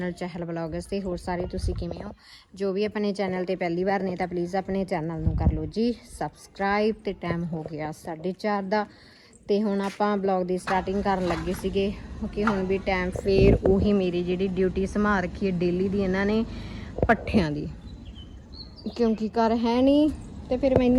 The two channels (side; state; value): both; identical; correlation 1.00